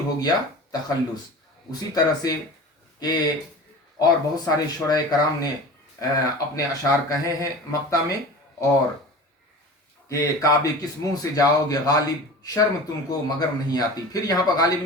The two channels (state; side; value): normal; both; correlation 0.36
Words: गया तखल्लुस। उसी तरह से कि और बहुत सारे शुरा कराम ने अपने अशार कहे हैं मक्ता में, और कि काबे किस मुंह से जाओगे गालिब, शर्म तुमको मगर नहीं आती। फिर यहाँ पर गालिब